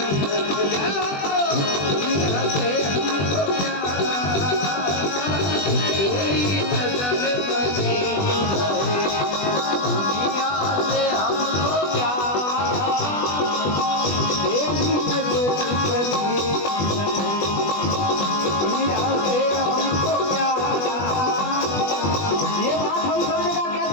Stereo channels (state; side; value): late; right; 20 ms